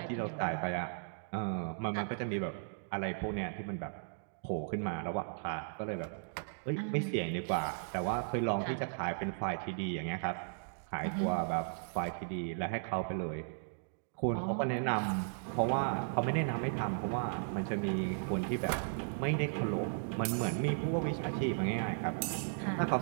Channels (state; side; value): silent; left; digital silence